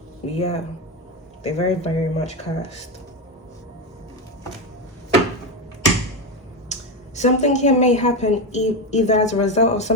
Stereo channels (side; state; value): both; normal; correlation 0.13